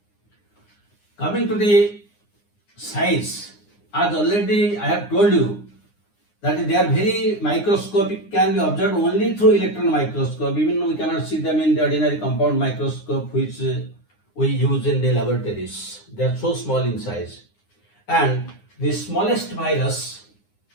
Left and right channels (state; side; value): late; right; 9.7 ms